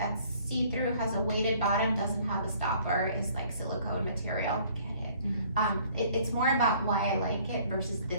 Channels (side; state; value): both; inverted; correlation -0.57